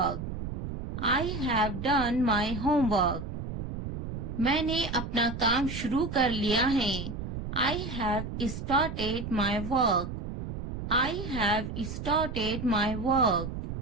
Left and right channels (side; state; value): right; noise; rumble, 6 dB below the sound